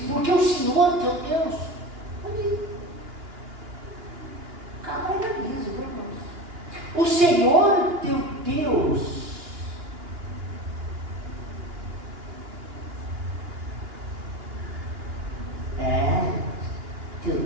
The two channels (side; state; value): left; late; 2.9 ms